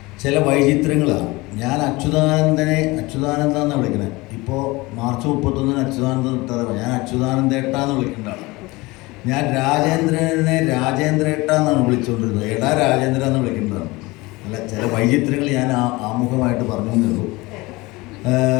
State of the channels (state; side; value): quieter; right; 22.3 dB